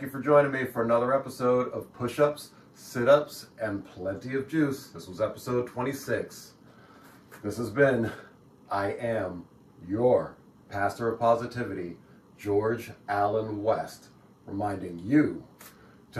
you for joining me for another episode of Push-Ups, Sit-Ups, and Plenty of Juice. This was episode 26. This has been, I am your Pastor of Positivity, George Allen West, reminding you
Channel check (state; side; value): identical; both; correlation 1.00